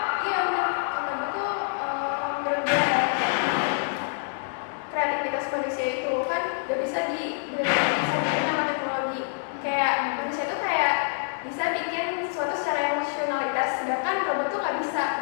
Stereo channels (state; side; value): silent; right; digital silence